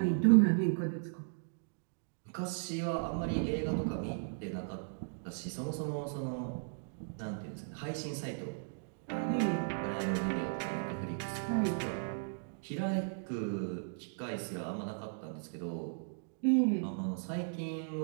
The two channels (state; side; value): silent; left; digital silence